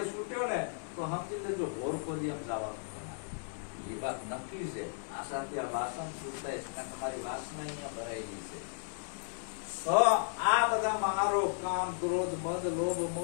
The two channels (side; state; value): right; silent; digital silence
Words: છૂટ્યો ને તો સમજી લેજો ઘોર ખોદિયામ જવાનું. એ વાત નક્કી છે. આ સાથે આ વાસણ છૂટાય છે, કારણ તમારી વાસના અહીંયા ભરાયેલી છે. તો આ બધા મહારોગ, કામ, ક્રોધ, મદ, લોભ,